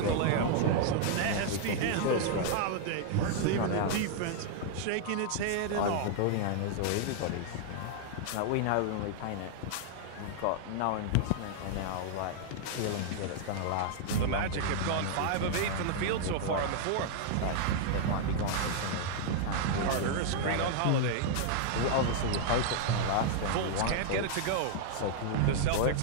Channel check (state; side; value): different; both; correlation -0.01